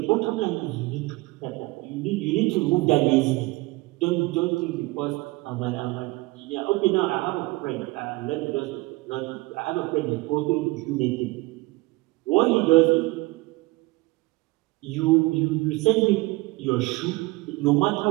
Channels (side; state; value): left; quieter; 22.2 dB